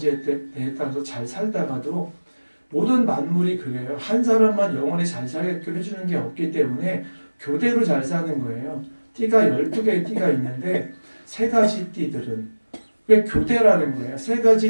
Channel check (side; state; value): both; inverted; correlation -1.00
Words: 따라서 잘 살다가도 모든 만물이 그래요. 한 사람만 영원히 잘 살게끔 해주는 게 없기 때문에 교대로 잘 사는 거예요. 띠가 12개의 띠가 있는데 세 가지 띠들은 왜 교대라는 거예요. 세